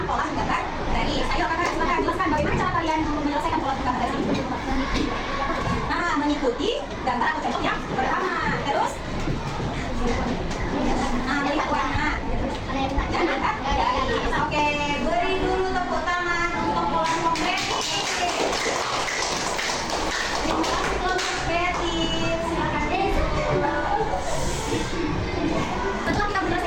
pola menggambar garis. Ayo, kakak, silakan jelaskan bagaimana cara kalian menyelesaikan pola menggambar garis ini. Nah, mengikuti gambar atau contoh yang pertama. Terus, nah, melihat warna dan angkat garis. Oke, beri dulu tepuk tangan untuk pola konkret. Kelompok kreatif, silakan. Setelah kita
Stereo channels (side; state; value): both; identical; correlation 1.00